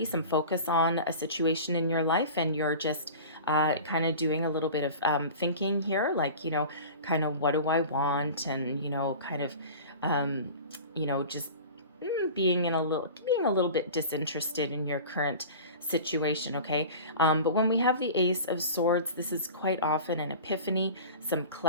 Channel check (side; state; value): both; inverted; correlation -0.37